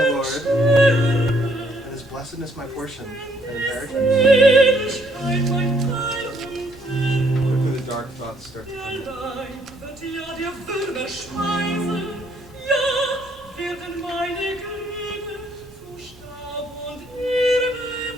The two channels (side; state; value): both; normal; correlation 0.67